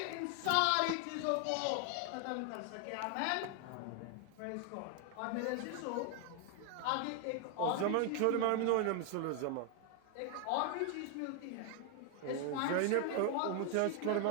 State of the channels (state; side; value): different; both; correlation 0.01